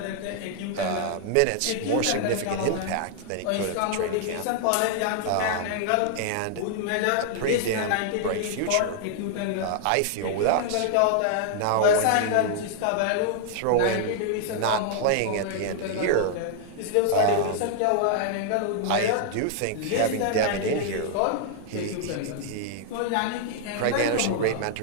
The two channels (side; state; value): both; different; correlation -0.01